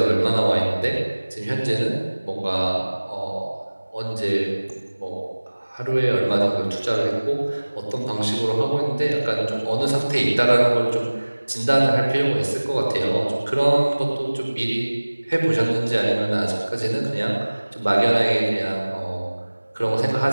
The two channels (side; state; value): both; inverted; correlation -1.00